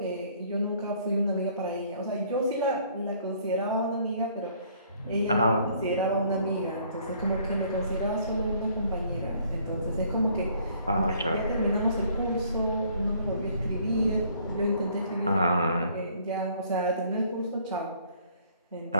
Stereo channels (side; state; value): both; inverted; correlation -0.61